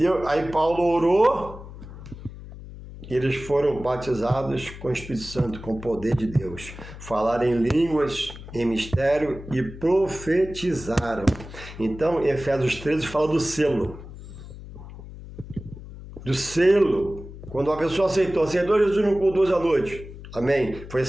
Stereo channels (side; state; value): left; noise; hum, 14 dB below the sound